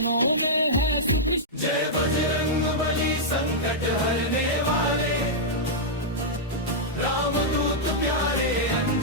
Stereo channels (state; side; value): normal; both; correlation -0.09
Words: में है सुख। जय बजरंग बली संकट हरने वाले, रामदूत प्यारे